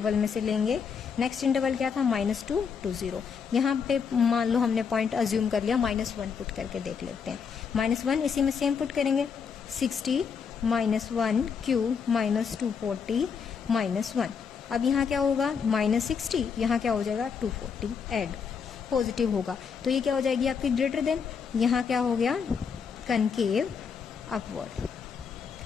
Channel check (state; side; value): quieter; right; 6.3 dB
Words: में से लेंगे। नेक्स्ट इंटरवल क्या था, -2 to 0। यहाँ पे मान लो हमने पॉइंट अज्यूम कर लिया, -1 पुट करके देख लेते हैं। -1 इसी में सेम पुट करेंगे, 60 -1 क्यूब -240 -1। अब यहाँ क्या होगा, -60, यहाँ क्या हो जाएगा 240 ऐड, पॉजिटिव होगा तो ये क्या हो जाएगी आपकी ग्रेटर देन, यहाँ क्या हो गया, concave upward.